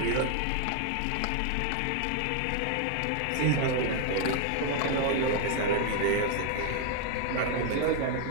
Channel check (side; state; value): both; different; correlation 0.00